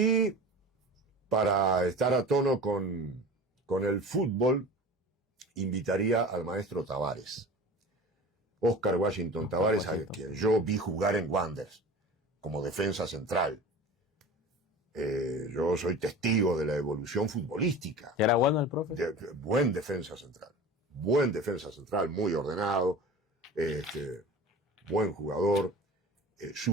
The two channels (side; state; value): both; normal; correlation 0.37